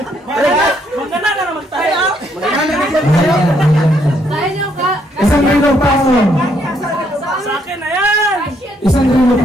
Magkana ka naman tayo. Kaya niyo ka? Isang rilo pa ako. Sa akin na yan. Isang rilo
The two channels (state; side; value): normal; both; correlation 0.72